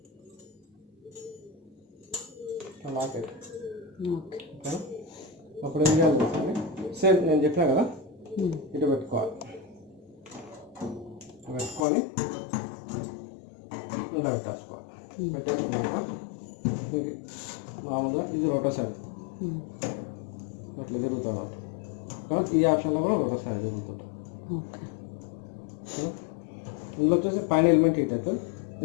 లాక్ అయితే అప్పుడు ఏం చేయాలి, సేమ్ నేను చెప్పినా కదా, ఇటు పెట్టుకోవాలి. పెట్టుకొని ఇలా పెట్టేసుకోవాలి. పెట్టేసుకున్నాక మామూలుగా ఇది రోటసరీ ఇట్లా తిరుగుతుంది అన్నమాట. కానీ ఈ ఆప్షన్లో కూడా రోటసరీ తిరుగుతుంటుంది. ఇందులో వచ్చేసి పైన ఎలిమెంట్ హీట్ అవుతుంది,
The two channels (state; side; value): drops out; right; at 11.9 s